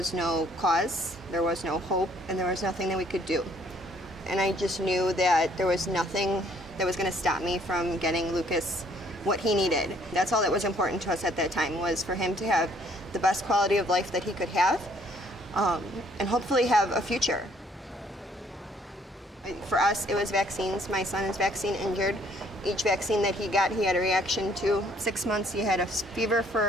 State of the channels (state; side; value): normal; both; correlation 0.62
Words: no cause, there was no hope, and there was nothing that we could do. And I just knew that there was nothing that was going to stop me from getting Lucas what he needed. That's all that was important to us at that time, was for him to have the best quality of life that he could have, and hopefully have a future. For us, it was vaccines. My son is vaccine injured. Each vaccine that he got, he had a reaction to. 6 months, he had a fever